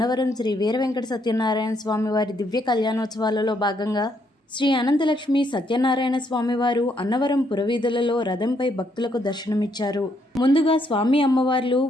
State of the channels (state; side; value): normal; both; correlation 0.73